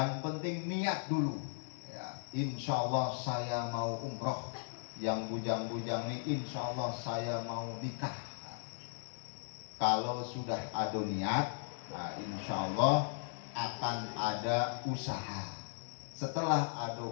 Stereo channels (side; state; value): right; silent; digital silence